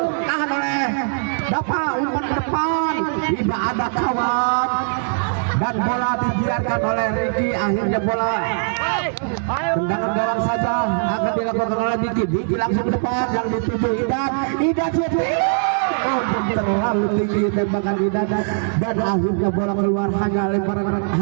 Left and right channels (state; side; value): silent; left; digital silence